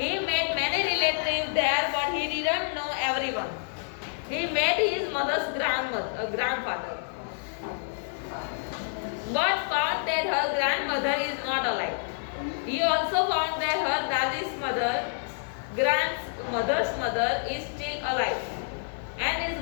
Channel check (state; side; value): silent; right; 59 dB below the other